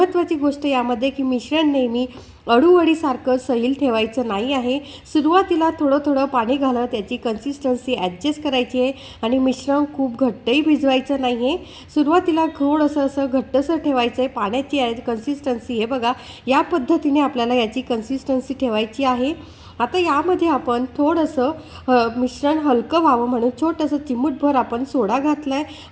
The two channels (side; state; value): both; identical; correlation 1.00